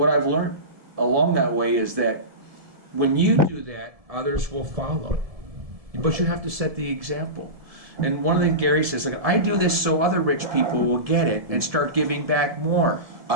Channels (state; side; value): late; left; 1.7 ms